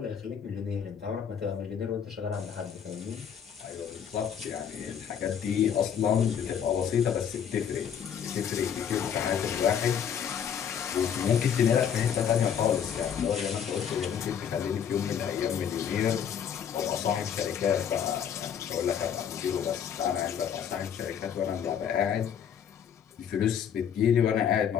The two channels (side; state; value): right; quieter; 8.2 dB